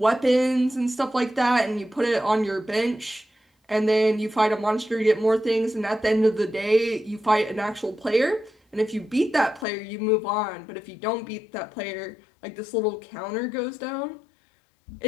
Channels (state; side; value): drops out; right; at 9.7 s